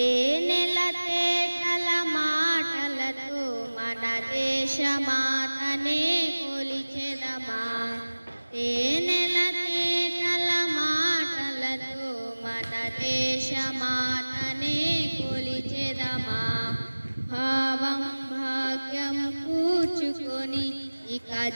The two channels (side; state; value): both; inverted; correlation -1.00